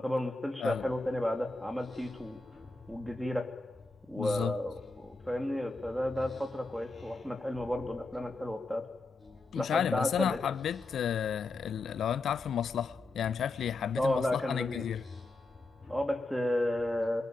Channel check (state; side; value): quieter; right; 3.2 dB